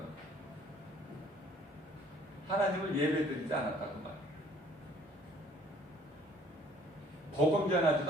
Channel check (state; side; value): normal; both; correlation 0.57